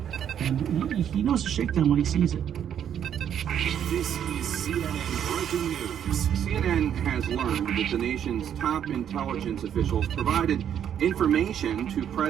and he knows a shakedown when he sees it. This is CNN breaking news. CNN has learned that the nation's top intelligence officials provided information to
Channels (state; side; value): quieter; left; 9.3 dB